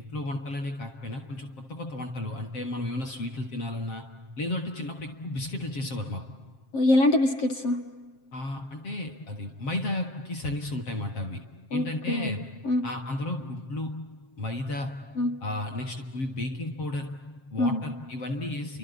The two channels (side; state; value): right; late; 7.5 ms